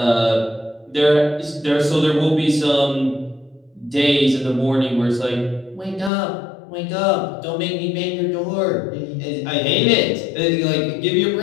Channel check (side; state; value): right; drops out; at 6.1 s